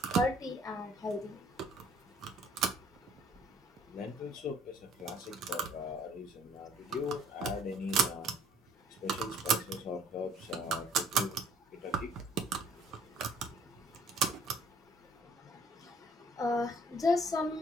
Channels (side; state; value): both; normal; correlation 0.58